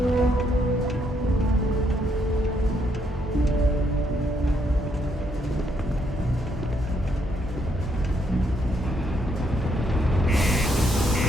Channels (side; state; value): both; normal; correlation 0.74